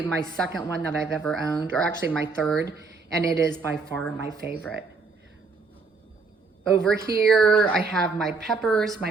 my second one that I've ever owned, or actually my third, and it is by far my favorite. Over here, I have my peppers, my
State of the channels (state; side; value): quieter; left; 4.3 dB